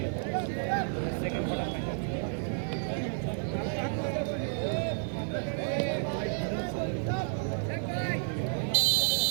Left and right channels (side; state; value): left; silent; 57 dB below the other